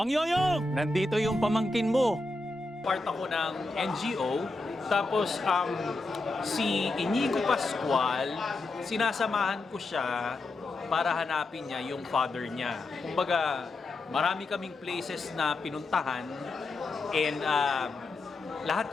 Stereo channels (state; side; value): quieter; right; 3.0 dB